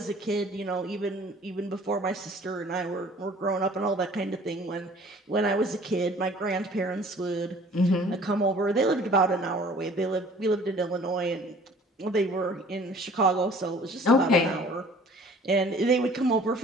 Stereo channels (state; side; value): normal; both; correlation 0.51